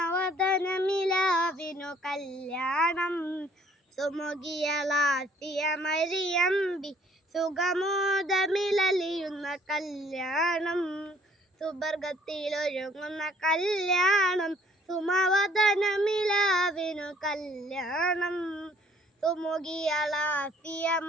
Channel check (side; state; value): both; normal; correlation 0.60